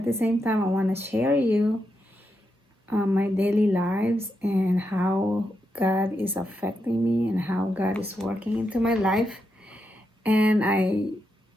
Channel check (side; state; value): both; normal; correlation 0.84